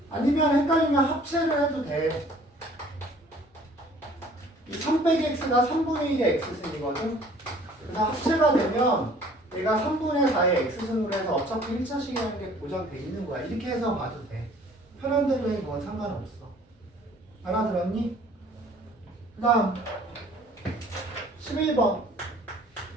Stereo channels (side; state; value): both; normal; correlation 0.54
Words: 아니면 헷갈리면 합체를 해도 돼. 이 3 빼기 x가 3분의 1의 x승이거든. 그래서 합체가 되면 얘가 3분의 4의 x승으로 해서 어차피 1차식이라는 게 보장돼 있는 거야. 이렇게 해서 봐도 돼. 편한 대로 해. 그건 상관없어. 알아들었니? 그 다음 11번